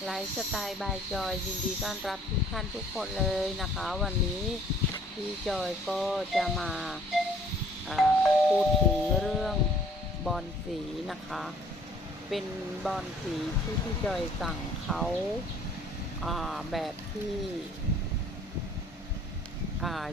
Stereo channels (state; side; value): normal; both; correlation 0.57